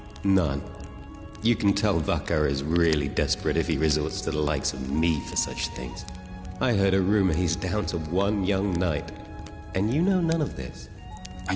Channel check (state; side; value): identical; both; correlation 1.00